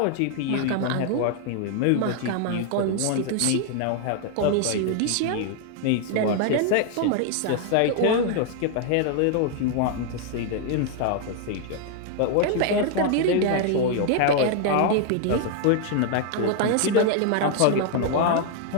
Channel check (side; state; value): both; different; correlation 0.00